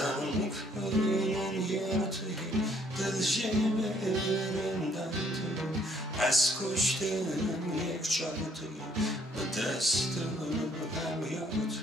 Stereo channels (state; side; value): normal; both; correlation 0.65